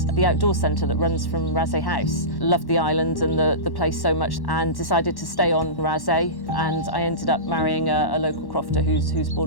the outdoor centre that runs from Raasay House. Loved the island and the place so much and decided to stay on Raasay, and I ended up marrying a local crofter who's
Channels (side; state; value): right; late; 1.1 ms